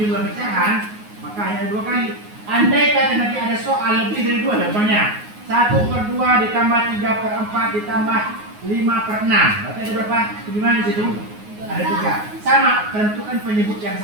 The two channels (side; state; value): left; late; 9.5 ms